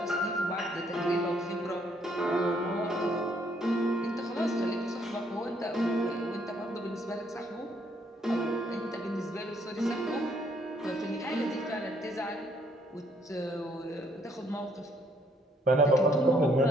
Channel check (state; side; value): normal; both; correlation 0.68